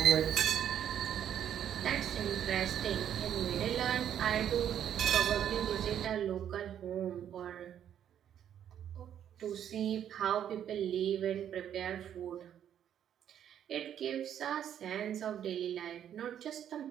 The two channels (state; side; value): quieter; left; 9.8 dB